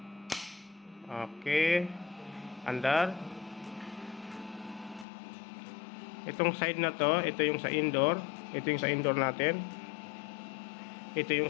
Okay, andar. Itong side na to, ito yung sa indoor. Ito yung sa indoor natin. Ito yung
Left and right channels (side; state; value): right; drops out; at 5.1 s